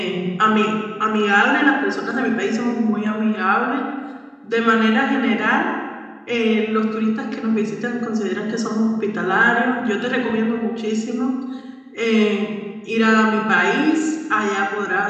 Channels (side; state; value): both; identical; correlation 1.00